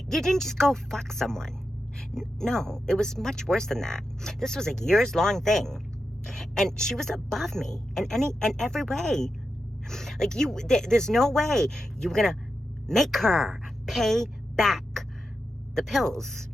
didn't just go fuck someone. No, it was much worse than that. This was a years-long thing. And she was above me in every way. Like, there's no way you were going to make her pay back the pills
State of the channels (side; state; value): both; normal; correlation 0.89